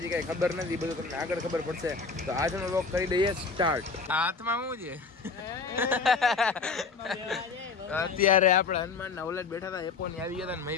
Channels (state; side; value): quieter; right; 4.7 dB